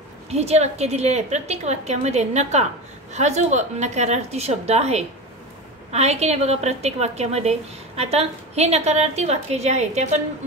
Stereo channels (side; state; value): both; normal; correlation 0.25